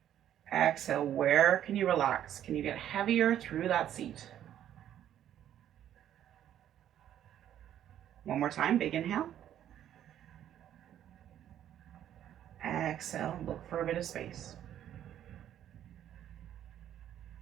Exhale, where can you relax? Can you get heavier through that seat? One more time, big inhale. Exhale, look for a bit of space.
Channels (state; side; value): quieter; left; 10.9 dB